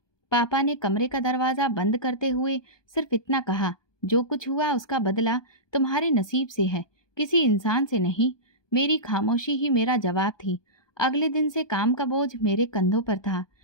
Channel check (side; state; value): right; late; 1.2 ms